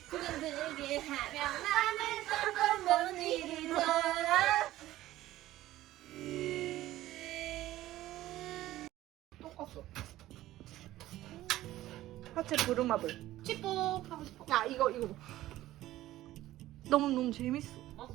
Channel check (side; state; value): left; quieter; 15.3 dB